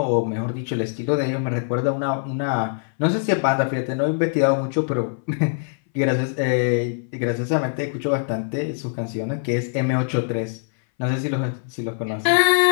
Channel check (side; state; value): right; silent; 61 dB below the other